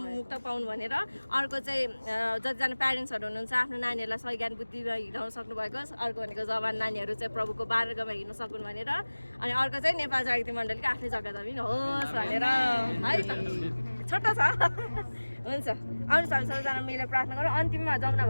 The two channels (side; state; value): both; inverted; correlation -1.00